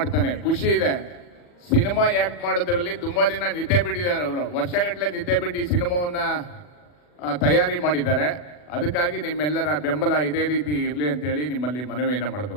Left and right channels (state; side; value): late; right; 40 ms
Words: ಖುಷಿ ಇದೆ. ಸಿನಿಮಾ ಆ್ಯಕ್ಟ್ ಮಾಡೋದ್ರಲ್ಲಿ ತುಂಬ ದಿನ ನಿದ್ದೆ ಬಿಟ್ಟಿದ್ದಾರೆ ಅವರು. ವರ್ಷಗಟ್ಟಲೆ ನಿದ್ದೆ ಬಿಟ್ಟು ಈ ಸಿನಿಮಾವನ್ನು ತಯಾರಿ ಮಾಡಿದ್ದಾರೆ. ಅದಕ್ಕಾಗಿ ನಿಮ್ಮೆಲ್ಲರ ಬೆಂಬಲ ಇದೇ ರೀತಿ ಇರಲಿ ಅಂತೇಳಿ ನಿಮ್ಮಲ್ಲಿ ಮನವಿಯನ್ನು